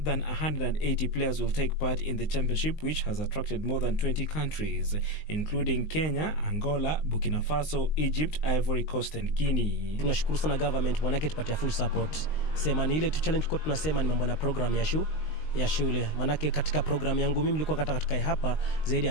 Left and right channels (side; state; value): right; late; 19 ms